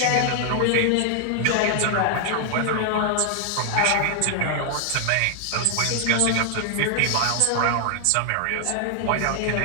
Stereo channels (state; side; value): different; both; correlation 0.00